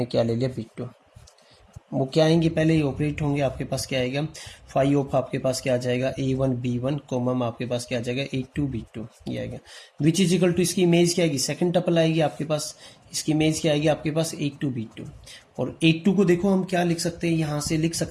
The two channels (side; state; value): both; identical; correlation 1.00